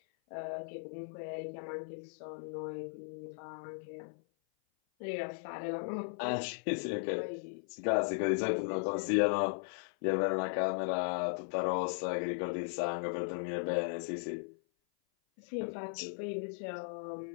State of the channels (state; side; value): silent; right; 53 dB below the other